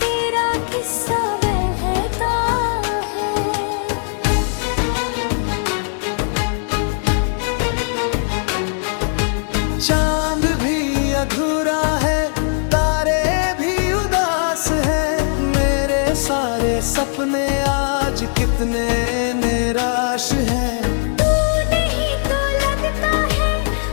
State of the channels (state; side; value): silent; right; 67 dB below the other